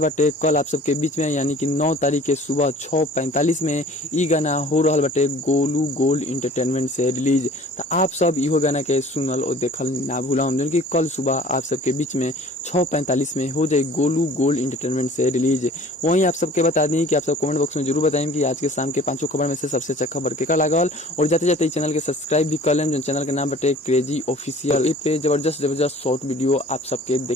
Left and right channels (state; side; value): normal; both; correlation 0.48